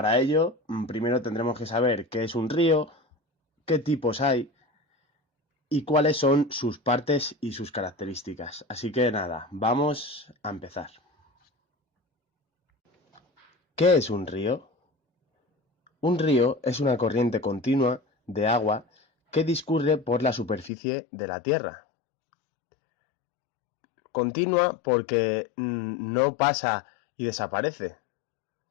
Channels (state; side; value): drops out; right; at 20.7 s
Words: ello, primero tendremos que saber qué es un río, qué tipos hay y cuáles son sus partes y sus características. Así que nada, vamos a empezar. ¿Qué es un río? Un río es una corriente continua de agua que discurre por la superficie de la tierra. Continua porque no pasa y desaparece,